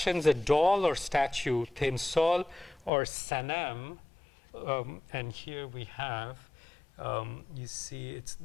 a doll or statue, Temsol or Sanam, and here we have, you see,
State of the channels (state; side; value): drops out; right; at 2.9 s